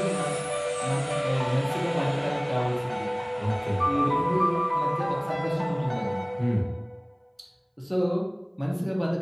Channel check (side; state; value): both; identical; correlation 1.00